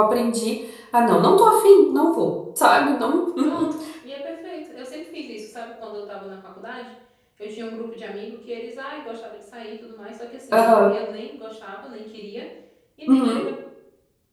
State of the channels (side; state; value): both; identical; correlation 1.00